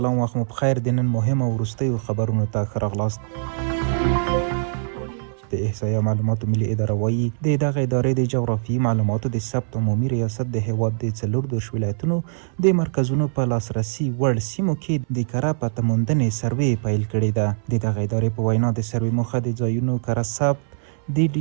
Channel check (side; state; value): left; silent; 62 dB below the other